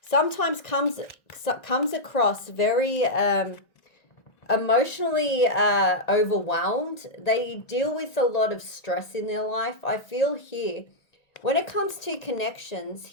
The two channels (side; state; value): right; late; 1.6 ms